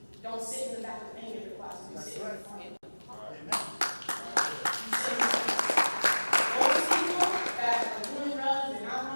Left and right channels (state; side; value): inverted; both; correlation -1.00